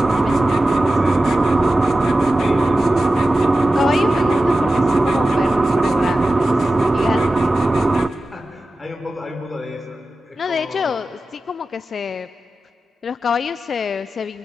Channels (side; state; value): both; normal; correlation 0.94